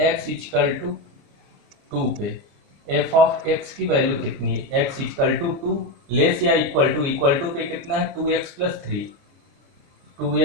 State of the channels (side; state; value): left; late; 29 ms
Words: x इक्वल टू 2 पे f ऑफ x की वैल्यू कितनी है, x इक्वल टू 2 लेस या इक्वल टू पे कितना है 2x + 3,